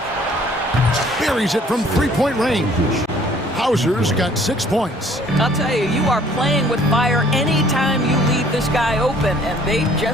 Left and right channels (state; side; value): normal; both; correlation 0.57